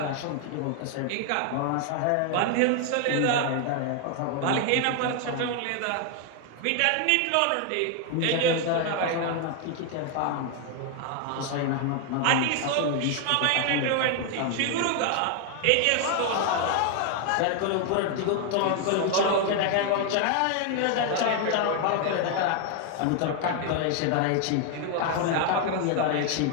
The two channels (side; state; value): both; different; correlation 0.00